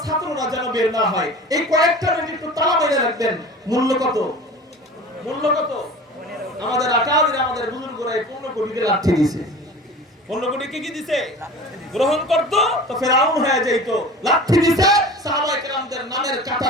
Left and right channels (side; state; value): both; normal; correlation 0.38